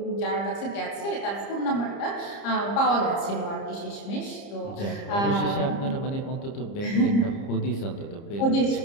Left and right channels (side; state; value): right; late; 30 ms